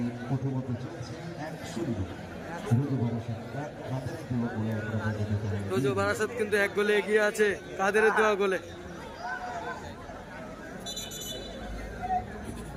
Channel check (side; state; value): both; identical; correlation 1.00